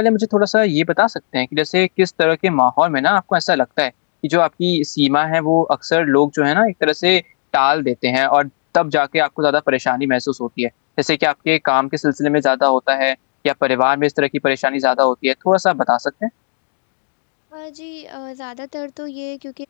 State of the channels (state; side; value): silent; right; digital silence